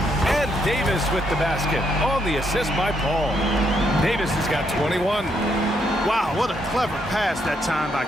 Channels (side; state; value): both; normal; correlation 0.76